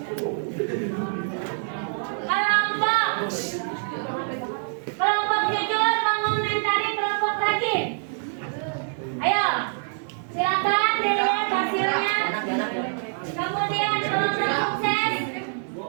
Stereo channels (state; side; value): silent; left; digital silence